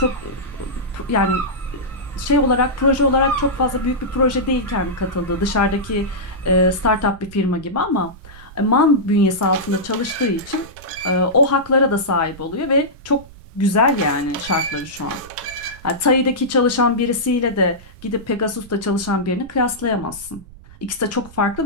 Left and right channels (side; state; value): right; noise; rumble, 19 dB below the sound